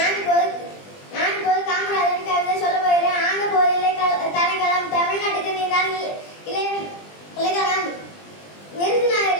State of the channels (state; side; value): late; right; 20 ms